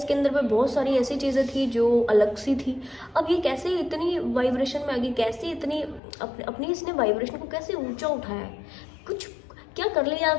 अंदर में बहुत सारी ऐसी चीज़ें थी जो अलग सी थी। अब ये कैसे इतनी वाइब्रेशन में आ गई, कैसे इतनी अपनी इसने वाइब्रेशन को कैसे ऊंचा उठाया है, कुछ क्या कर लिया,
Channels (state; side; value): drops out; right; at 6.0 s